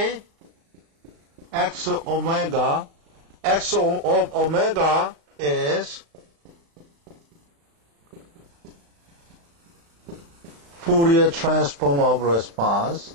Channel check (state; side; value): late; left; 35 ms